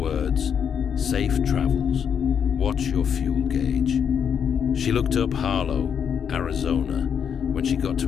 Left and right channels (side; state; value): right; quieter; 7.6 dB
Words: "Safe travels, watch your fuel gauge." She looked up Harlow, Arizona, when she got